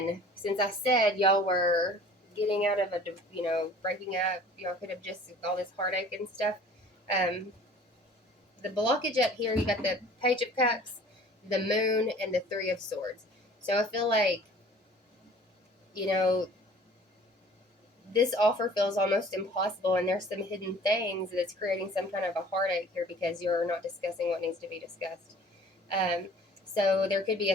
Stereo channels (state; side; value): normal; both; correlation 0.48